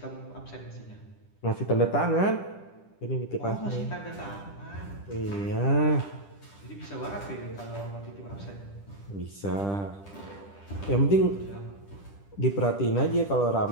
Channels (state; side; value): late; right; 10 ms